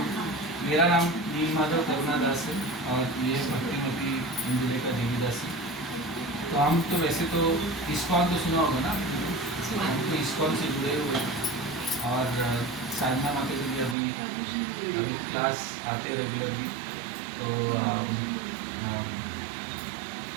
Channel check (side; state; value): left; drops out; at 14.0 s